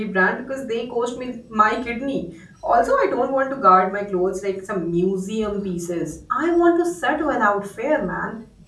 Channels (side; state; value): both; identical; correlation 1.00